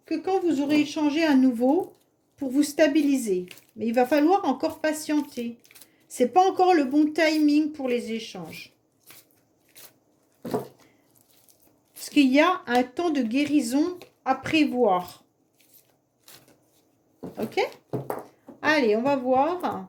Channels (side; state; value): both; identical; correlation 1.00